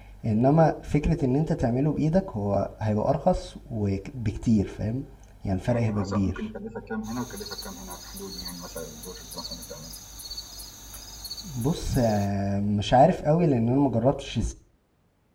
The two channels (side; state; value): both; identical; correlation 1.00